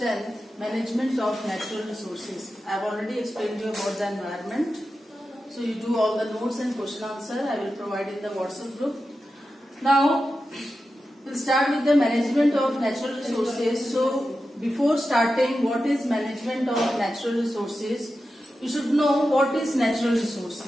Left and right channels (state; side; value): normal; both; correlation 0.91